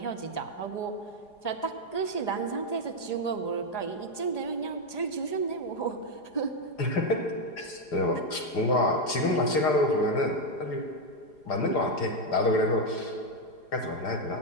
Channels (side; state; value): right; late; 4.8 ms